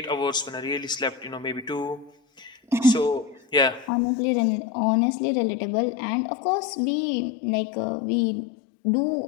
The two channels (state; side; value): drops out; right; at 3.9 s